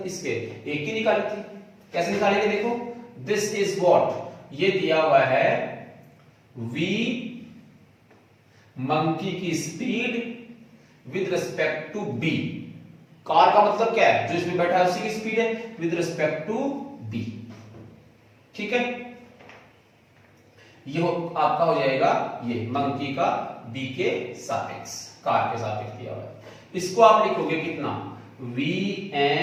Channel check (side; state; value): both; identical; correlation 1.00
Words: इसके ए की निकाली थी, कैसे निकालेंगे, देखो दिस इज व्हाट, ये दिया हुआ है v मंकी की speed with respect to b। Car का मतलब क्या है, जो इसमें बैठा है उसी की स्पीड है, विद रिस्पेक्ट टू b। ठीक है, ये आपका हो जाएगा ये मंकी का b के सापेक्ष, कार के सापेक्ष दिया हुआ है। इसको आप लिखोगे कितना,